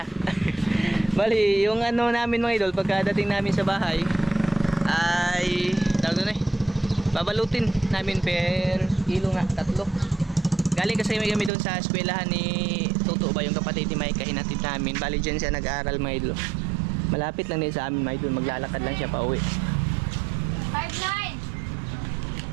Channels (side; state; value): left; drops out; at 11.5 s